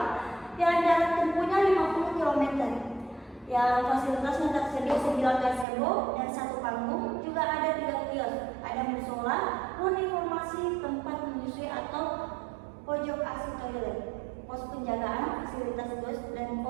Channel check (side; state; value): left; drops out; at 5.7 s